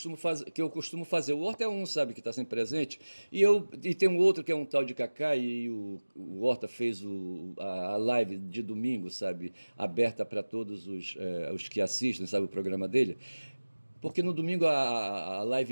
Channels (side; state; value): both; inverted; correlation -1.00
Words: fazer. O Horta é um, sabe, que está sempre presente, e tem um outro que é um tal de Cacá, e o Horta fez a live de domingo, sabe, aberta para todos os que assistem, sabe, o programa dele. Porque no domingo a